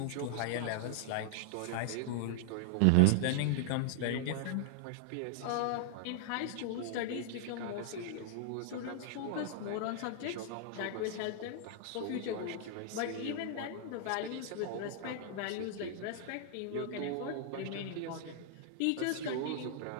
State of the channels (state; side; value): different; both; correlation -0.01